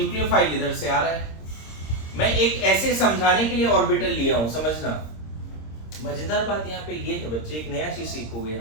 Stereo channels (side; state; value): right; late; 26 ms